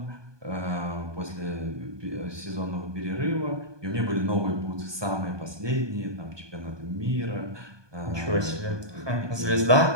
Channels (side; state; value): left; late; 1.2 ms